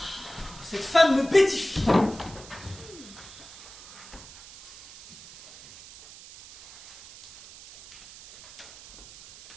Cette femme me pétifie.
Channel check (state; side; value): noise; right; hiss, 18 dB below the sound